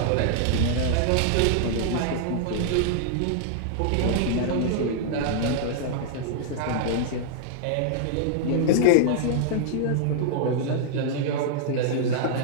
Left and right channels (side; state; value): both; different; correlation -0.01